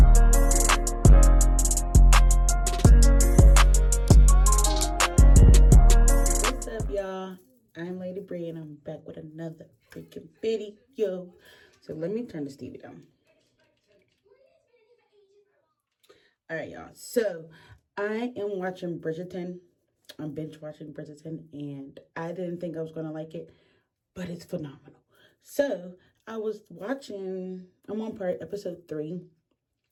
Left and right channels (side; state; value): both; identical; correlation 1.00